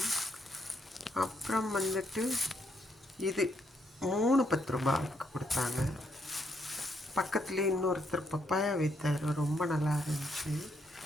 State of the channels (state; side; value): normal; both; correlation 0.75